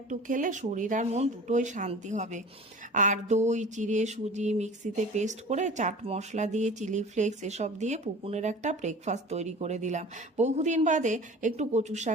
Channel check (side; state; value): both; normal; correlation 0.40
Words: খেলে শরীর আর মন দুটোই শান্তি হবে। আর দই চিড়ে সুজি মিক্সিতে পেস্ট করে চাট মশলা দিয়ে চিলি ফ্লেক্স এসব দিয়ে পুকুনের একটা ব্রেকফাস্ট তৈরি করে দিলাম। বহুদিন বাদে একটু কচুর